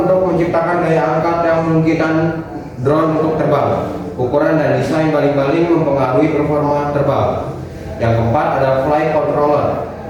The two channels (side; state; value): both; identical; correlation 1.00